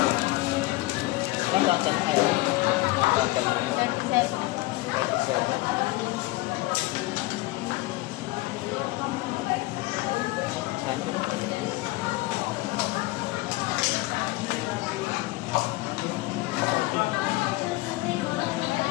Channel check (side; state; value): right; quieter; 20.4 dB